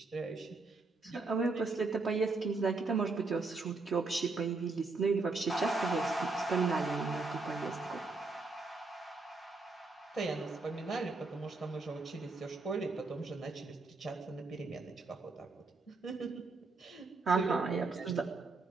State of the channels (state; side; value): quieter; left; 3.7 dB